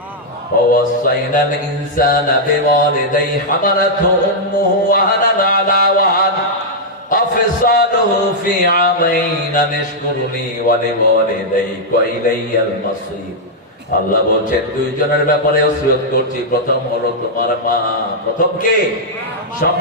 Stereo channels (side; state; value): both; normal; correlation -0.06